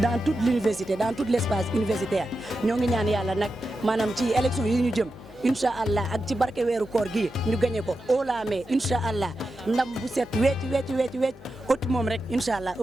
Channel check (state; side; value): noise; left; hum, 19 dB below the sound